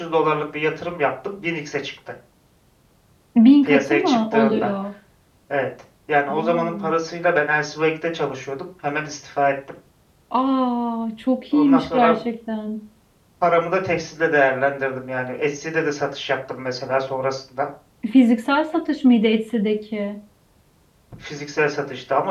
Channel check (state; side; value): identical; both; correlation 1.00